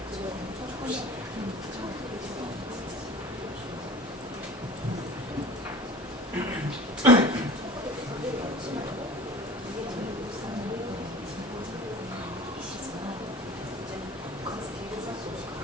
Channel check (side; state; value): both; normal; correlation 0.41